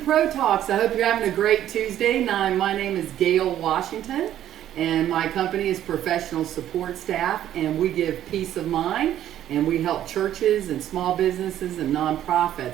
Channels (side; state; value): left; quieter; 11.7 dB